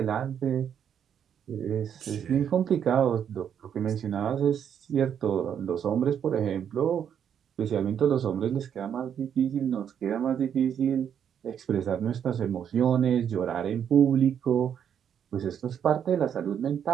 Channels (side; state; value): left; quieter; 8.6 dB